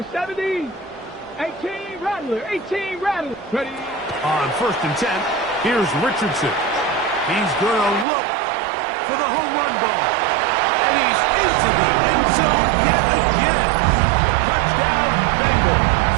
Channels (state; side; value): drops out; left; at 8.1 s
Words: 70. 18 Rattler, 18 Rattler. Ready? On first and 10, here's Richardson. He's going to look for the home run ball. And he's into the end zone yet again. Touchdown, Bengals.